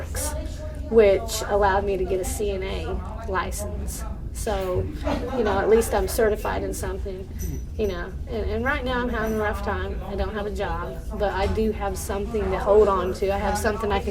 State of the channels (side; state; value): both; identical; correlation 1.00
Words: which allowed me to get a CNA license. So, at least I'm certified in something, and right now I'm having a rough time. I don't have a job, but I do have something to hold on to. I have something I